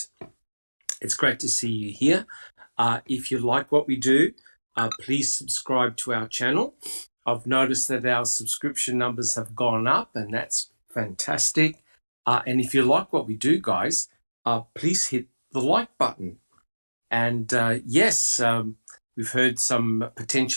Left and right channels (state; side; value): inverted; both; correlation -1.00